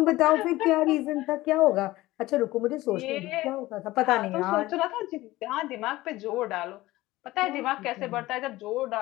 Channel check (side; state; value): right; quieter; 18.0 dB